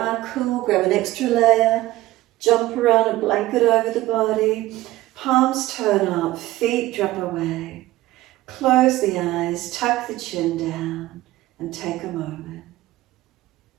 cool, grab an extra layer, jump around a blanket over the body, palms turn up, feet drop away. Close the eyes, tuck the chin down and take a moment.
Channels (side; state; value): left; quieter; 16.8 dB